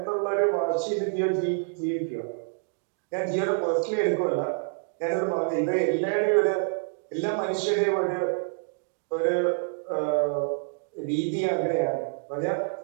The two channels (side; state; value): left; silent; digital silence